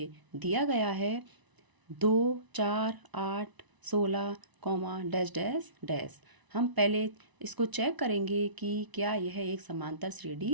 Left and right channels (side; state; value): left; late; 1.0 ms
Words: दिया गया है 2, 4, 8, 16, डैश डैश डैश। हम पहले इसको चेक करेंगे कि क्या यह एक समांतर